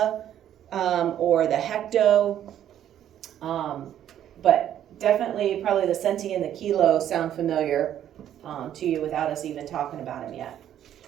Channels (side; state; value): left; quieter; 10.8 dB